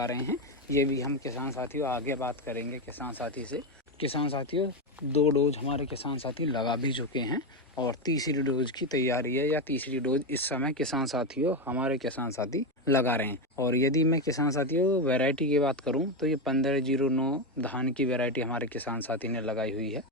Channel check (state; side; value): normal; both; correlation 0.10